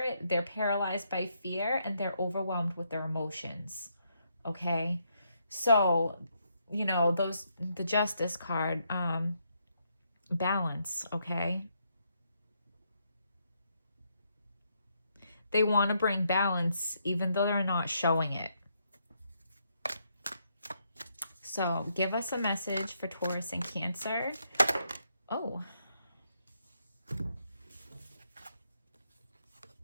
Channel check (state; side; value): inverted; both; correlation -0.76